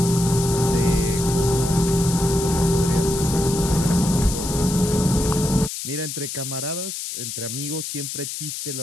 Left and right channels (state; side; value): noise; left; hiss, 6 dB below the sound